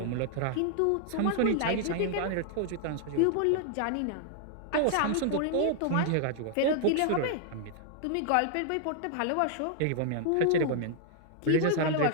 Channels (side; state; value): both; different; correlation -0.01